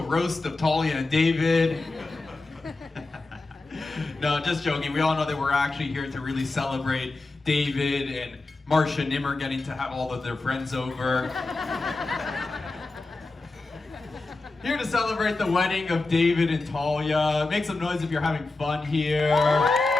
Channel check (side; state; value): right; quieter; 3.3 dB